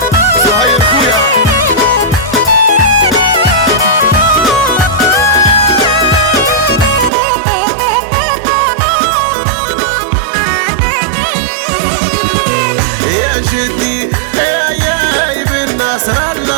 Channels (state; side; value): drops out; left; at 7.1 s